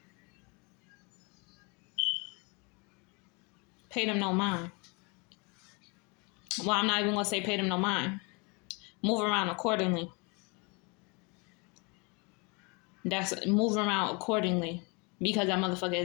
Pay them no mind. Well, I'm not even going to say pay them no mind. Move around accordingly. Move around accordingly. Because that motherfucker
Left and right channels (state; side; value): quieter; right; 30.9 dB